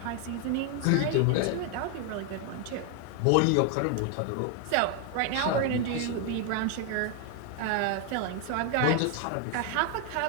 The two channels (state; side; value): different; both; correlation 0.01